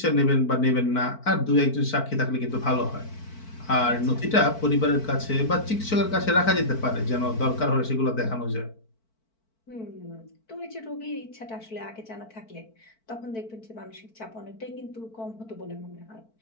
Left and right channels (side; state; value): right; late; 4.5 ms